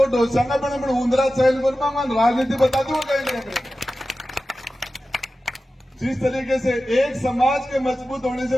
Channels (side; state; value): both; normal; correlation 0.94